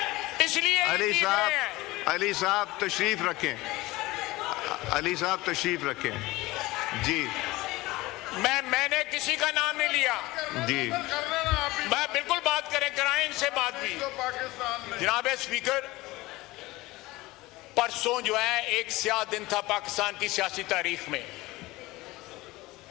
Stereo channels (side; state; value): right; quieter; 19.9 dB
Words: इसलिए अली साहब तशरीफ रखें, अली साहब तशरीफ रखें। जी मैंने किसी का नाम नहीं लिया। जी मैं बिल्कुल बात कराएं इनसे बात भी। जनाब स्पीकर, परसों जो है एक स्याह दिन था पाकिस्तान की सियासी तारीख में